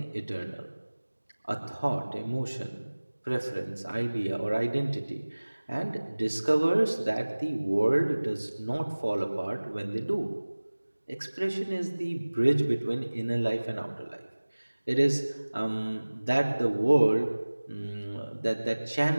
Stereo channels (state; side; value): inverted; both; correlation -1.00